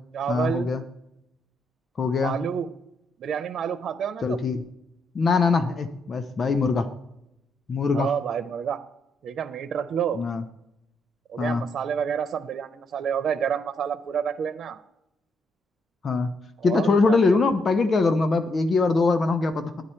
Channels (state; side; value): normal; both; correlation 0.76